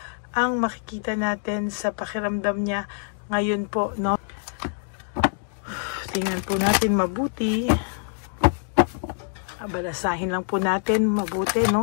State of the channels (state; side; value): silent; right; 60 dB below the other